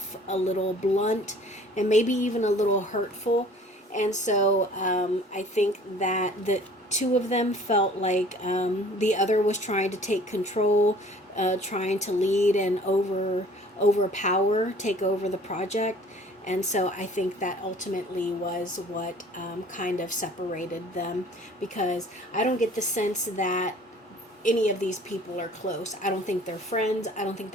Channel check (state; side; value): normal; both; correlation 0.51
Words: a little blunt, and maybe even a little hurtful. And so I think that the two of them felt like the other was trying to take control, trying to lead and overpower, take over the project. And so I think that ultimately was what kind of separated them, because I don't get the sense that any of these people are close. I don't think they're friends. I don't think